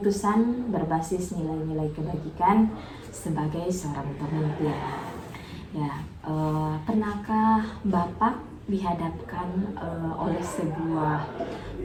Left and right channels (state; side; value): identical; both; correlation 1.00